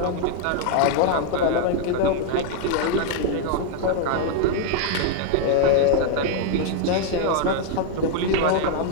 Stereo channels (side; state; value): both; different; correlation 0.00